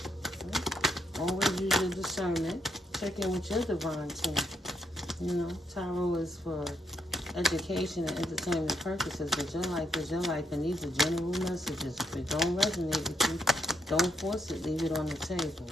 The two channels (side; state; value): both; normal; correlation 0.76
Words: Always use your discernment. Check in with your divine team. You know, tarot is for education and entertainment purposes, but your life is your life and these are general messages. If it don't resonate with you, don't force it, leave it on the table,